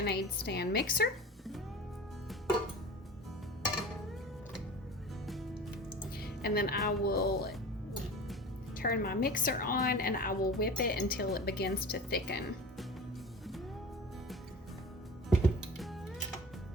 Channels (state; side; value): normal; both; correlation 0.36